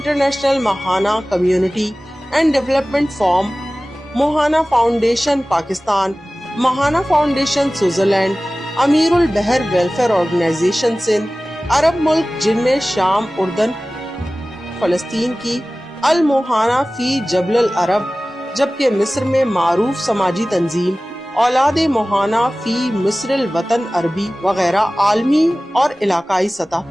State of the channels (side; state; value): both; normal; correlation 0.97